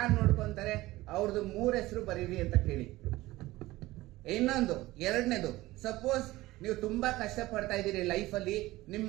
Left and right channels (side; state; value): left; quieter; 18.3 dB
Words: ನೋಡ್ಕೊಂತಾರೆ ಅವ್ರದ್ದು 3 ಹೆಸರು ಬರೀರಿ ಅಂತ ಕೇಳಿ. ಇನ್ನೊಂದು 2ನೇದು, ಸಪೋಸ್ ನೀವು ತುಂಬಾ ಕಷ್ಟ ಪಡ್ತಾ ಇದ್ದೀರಿ ಲೈಫ್ ಅಲ್ಲಿ, ನಿಮ್